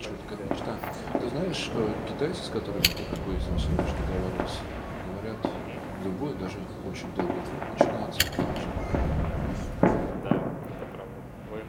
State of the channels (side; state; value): both; identical; correlation 1.00